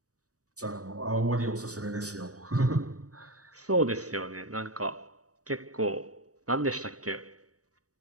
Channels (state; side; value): late; left; 0.66 ms